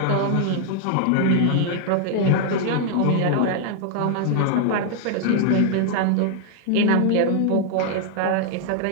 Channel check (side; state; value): both; different; correlation 0.00